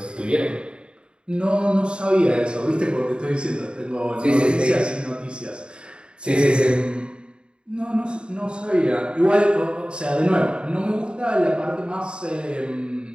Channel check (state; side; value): late; left; 0.053 ms